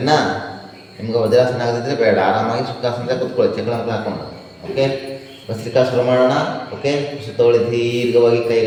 ನಿಮ್ಗೆ ವಜ್ರಾಸನ ಆಗದಿದ್ದರೆ ಬೇಡ, ಆರಾಮಾಗಿ ಸುಖಾಸನದಾಗ ಕೂತ್ಕೊಳ್ಳಿ ಚಕ್ರಂತ ಹಾಕೊಂಡು. ಓಕೆ, ಭಸ್ತ್ರಿಕಾ ಶುರು ಮಾಡೋಣ. ಓಕೆ, ಉಸಿರು ತಗೊಳ್ಳಿ ದೀರ್ಘವಾಗಿ,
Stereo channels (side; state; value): both; identical; correlation 1.00